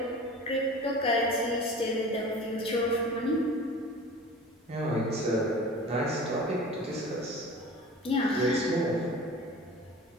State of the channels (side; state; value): both; normal; correlation 0.39